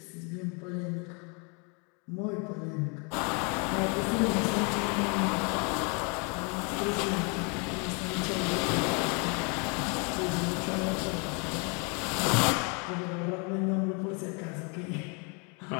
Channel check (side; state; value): right; quieter; 34.2 dB